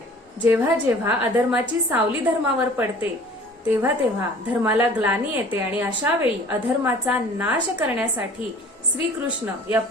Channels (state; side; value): normal; both; correlation 0.47